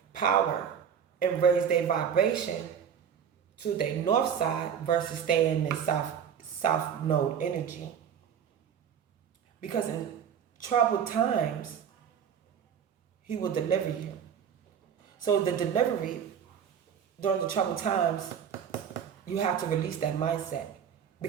power and raise their vibration to their north side versus staying in their south node energy. Because in troubled times, he will deliver you. So the delivery during the troubled times, you have to release that mindset.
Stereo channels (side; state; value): left; quieter; 8.0 dB